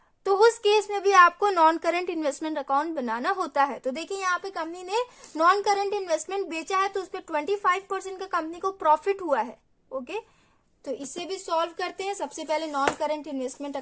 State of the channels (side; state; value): both; identical; correlation 1.00